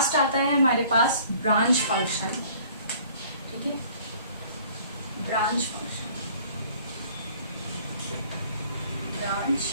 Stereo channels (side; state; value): both; inverted; correlation -0.54